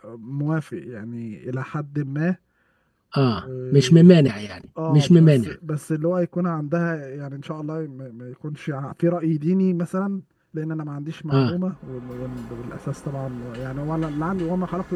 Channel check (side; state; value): both; identical; correlation 1.00